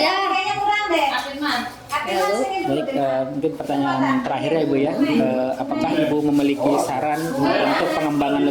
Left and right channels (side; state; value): both; identical; correlation 1.00